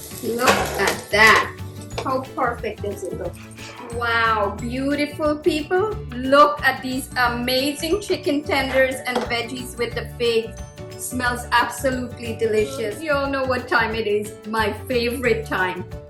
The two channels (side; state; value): both; identical; correlation 1.00